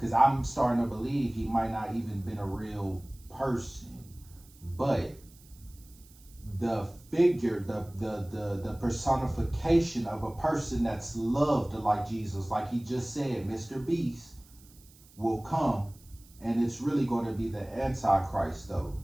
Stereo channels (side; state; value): right; noise; hiss, 25 dB below the sound